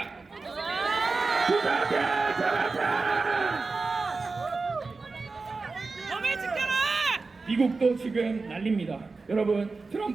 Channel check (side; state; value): left; quieter; 4.0 dB